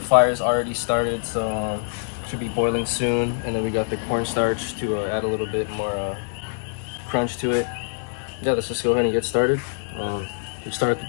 fire's already started, so should be boiling soon. And then we got the cornstarch to add a little bit more crunch to it. Yeah, let's just go ahead and get started. We start with the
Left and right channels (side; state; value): right; silent; 62 dB below the other